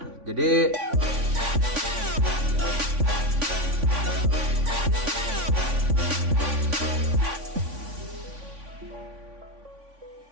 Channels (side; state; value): left; late; 3.5 ms